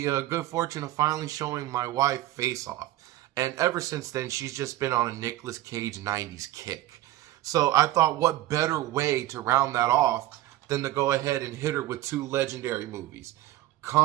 good fortune of finally showing my wife Face Off. And ever since then, she's just been on a Nicolas Cage 90s kick. So I thought, what better way to round that off than to go ahead and hit her with two legendary movies,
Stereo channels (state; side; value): quieter; left; 15.4 dB